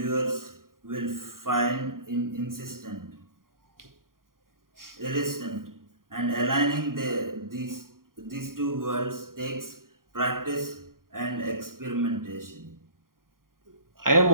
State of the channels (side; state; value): left; late; 0.91 ms